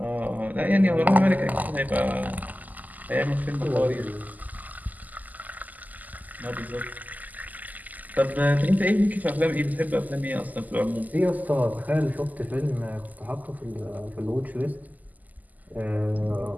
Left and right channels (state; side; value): late; left; 0.081 ms